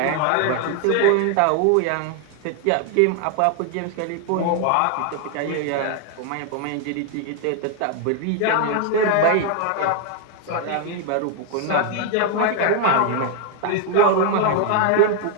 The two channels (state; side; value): different; both; correlation 0.01